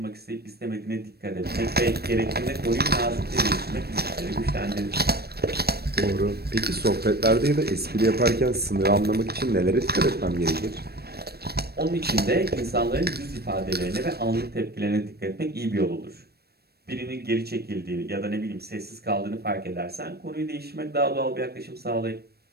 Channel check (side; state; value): left; late; 0.47 ms